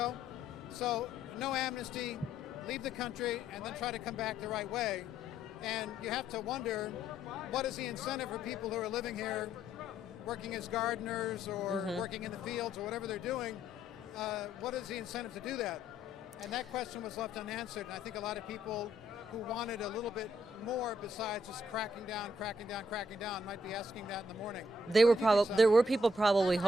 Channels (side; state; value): both; normal; correlation 0.71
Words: So no amnesty, leave the country, and then try to come back the right way. And you have to wonder, what is the incentive for people who are living here, working as gardeners or working in the fields or whatever they're doing? What is the incentive to do that? And that question was left unanswered. And I think a lot of people who wanted a little bit more besides just cracking down, might be asking that in the morning. There were people probably